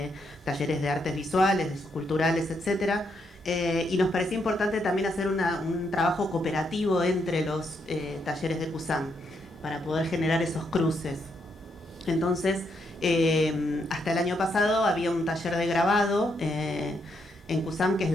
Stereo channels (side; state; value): both; normal; correlation 0.78